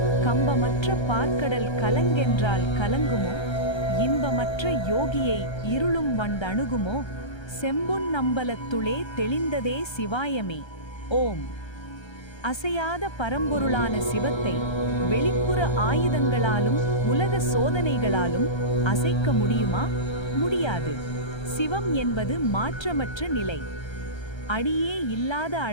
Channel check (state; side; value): late; right; 1.3 ms